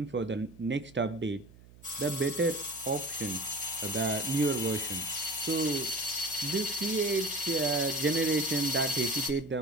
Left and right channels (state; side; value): noise; right; hum, 23 dB below the sound